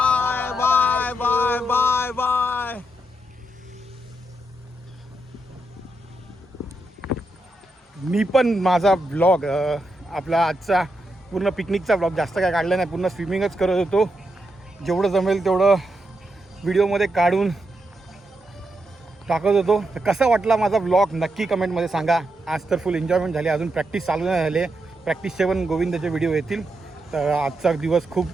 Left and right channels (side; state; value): both; normal; correlation 0.83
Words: bye bye bye bye. मी पण माझा ब्लॉग आपला आजचा पूर्ण पिकनिकचा ब्लॉग जास्त काय काढला नाही, पूर्ण स्विमिंगच करत होतो. जेवढं जमेल तेवढं व्हिडिओमध्ये काढून टाकत होतो. तर कसा वाटला माझा व्लॉग नक्की कमेंटमध्ये सांगा. आज तर फुल एन्जॉयमेंट झाली, अजून प्रॅक्टिस चालू नाही झाली. प्रॅक्टिसचे पण गोविंदाचे व्हिडिओ येतील. तर आजचा दिवस खूप